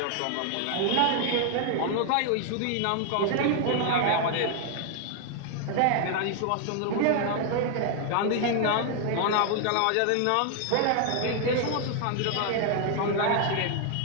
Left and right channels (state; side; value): different; both; correlation 0.00